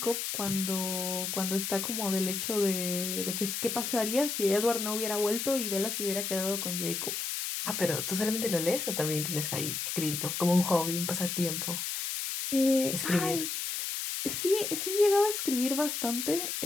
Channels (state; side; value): noise; left; hiss, 3 dB below the sound